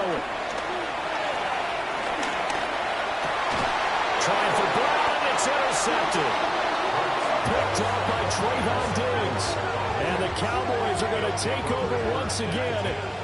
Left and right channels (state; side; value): identical; both; correlation 1.00